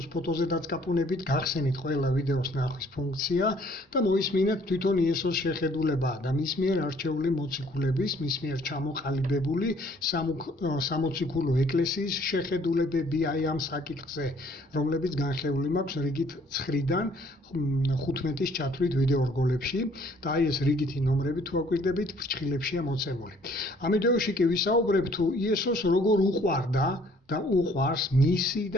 ფოტოზე დაწყაპუნებით, გახსენით ყველა ვიდეოს ნახვის ფუნქცია და მოისმინეთ თვითონ იესოს შეხედულება და მის მიერ არჩეული მოციქულების, მის მიერ ჩამოყალიბებული სამოციქულო ეკლესიის შეხედულებები აი ამ საკითხზე, რომლებიც განხილული მაქვს რიგით 9-დან 15-ის ჩათვლით ვიდეო რგოლებში და აი ეს რიგითი ნომრები თუ აკვირდებით ფრჩხილებშია მოცემული. ამ ვიდეოში კი ვისაუბრებ თუ იესოს როგორ უყვარდა და უყვარს მისი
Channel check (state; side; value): normal; both; correlation 0.60